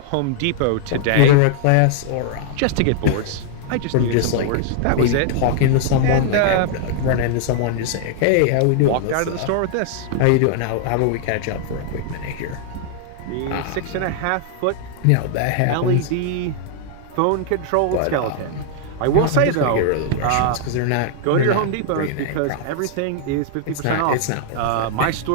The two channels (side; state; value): both; different; correlation -0.01